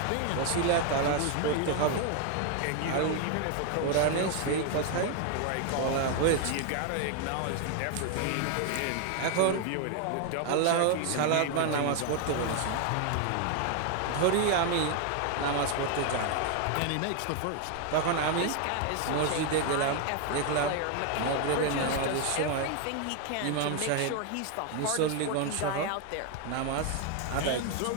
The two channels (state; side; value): different; both; correlation 0.01